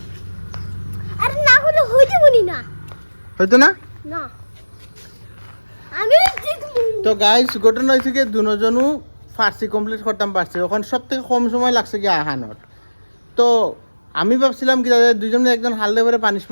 আরে না হলে হইতে বলি না হয়তো না না আমি জিতবো তো গাইস ঘটনা হয়েছে কি দুজনও ফার্সি কমপ্লিট করতাম পারছি এখন সব থেকে কম সময় লাগছে কি আহানোর তো আমি ভাবছিলাম কি দাদা দুজনে একজন হালদে করে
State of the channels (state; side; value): inverted; both; correlation -1.00